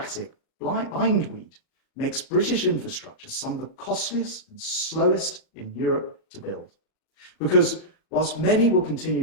bindweed makes British infrastructure some of the costliest and slowest in Europe to build. Because whilst many will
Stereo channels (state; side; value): late; right; 37 ms